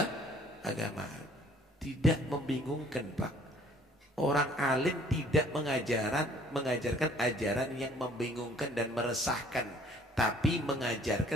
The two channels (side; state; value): both; normal; correlation 0.56